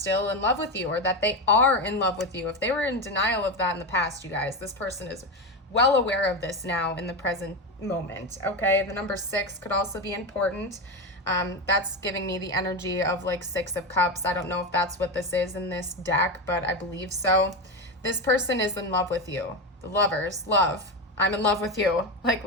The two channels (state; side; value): normal; both; correlation 0.16